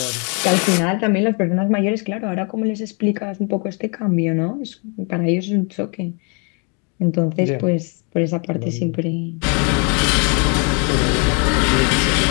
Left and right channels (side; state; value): right; quieter; 35.5 dB